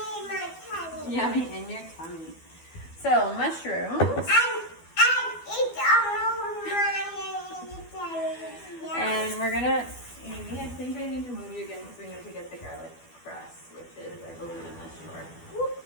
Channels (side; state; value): right; late; 12 ms